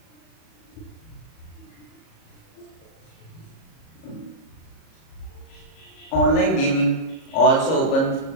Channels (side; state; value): right; late; 37 ms